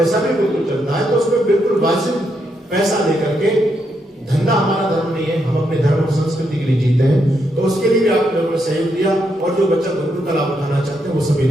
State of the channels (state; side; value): normal; both; correlation 0.79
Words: भी गुरुकुल चलता है, तो उसमें बिल्कुल वाजिब पैसा लेकर के, धंधा हमारा धर्म नहीं है, हम अपने धर्म और संस्कृति के लिए जीते हैं। तो उसके लिए भी आप लोगों ने सहयोग दिया, और जो बच्चा गुरुकुल का लाभ उठाना चाहते हैं वो सभी